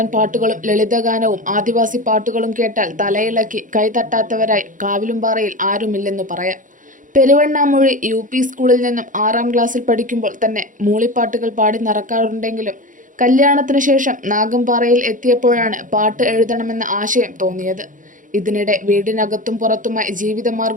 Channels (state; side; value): late; left; 0.38 ms